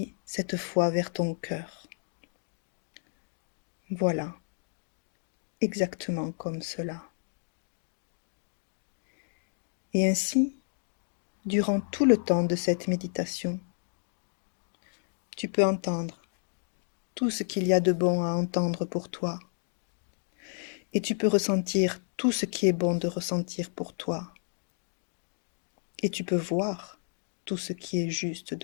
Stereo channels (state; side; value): silent; right; digital silence